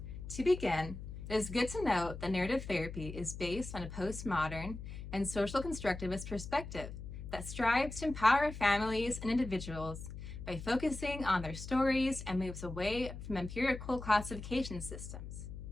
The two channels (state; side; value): noise; left; hum, 10 dB below the sound